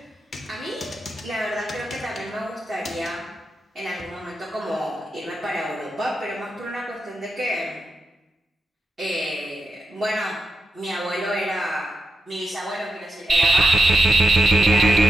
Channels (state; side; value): normal; both; correlation 0.87